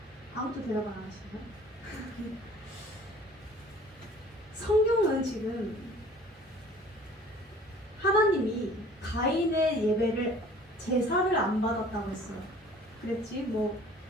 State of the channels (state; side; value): normal; both; correlation 0.50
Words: 아무도 대답 안 하시나요? 성경은 지금 하나님이 가인의 예배를 제사를 안 받았다고 했어요. 그랬지 뭐